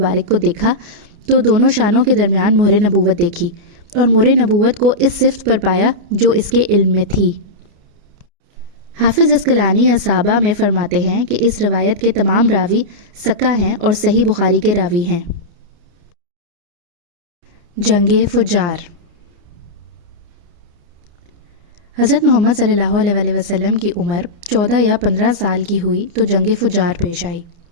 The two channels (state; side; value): late; left; 29 ms